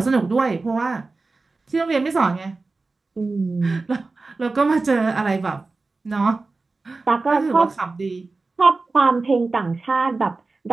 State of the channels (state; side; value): quieter; left; 3.7 dB